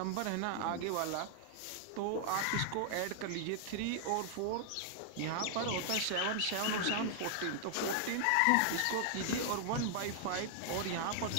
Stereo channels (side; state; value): both; different; correlation -0.01